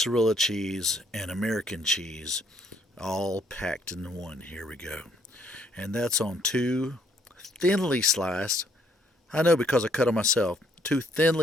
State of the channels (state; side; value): normal; both; correlation 0.68